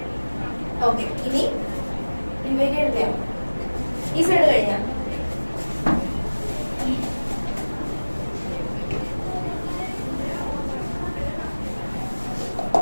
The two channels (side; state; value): both; inverted; correlation -1.00